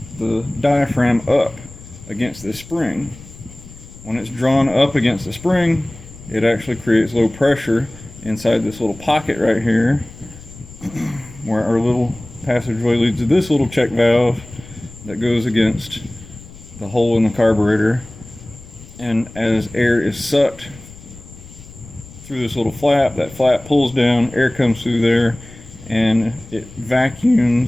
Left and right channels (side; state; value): left; noise; rumble, 19 dB below the sound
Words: the diaphragm up against this spring. When it's drawn up against the spring, it actually creates low pressure inside this little pocket right here, where our little passageway leads to this little check valve that goes against the hole in the carburetor. And as air is sucked through this little flap, that flap pulls down, air comes through there, and it